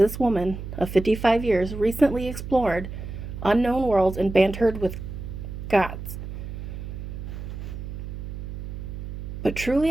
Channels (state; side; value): noise; right; hum, 8 dB below the sound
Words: woman of 55 years recently explored unknown worlds and bantered with gods. But